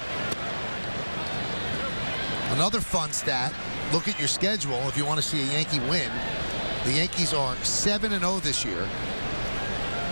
Another fun stat, look at your schedule if you want to see a Yankee win. The Yankees are 7-0 this year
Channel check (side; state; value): both; inverted; correlation -1.00